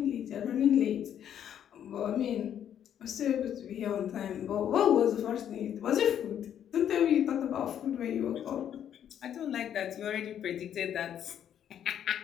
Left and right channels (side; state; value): right; quieter; 9.7 dB